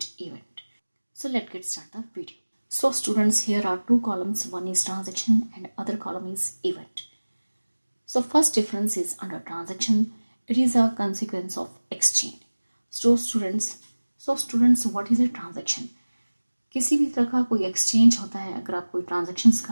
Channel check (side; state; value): both; inverted; correlation -1.00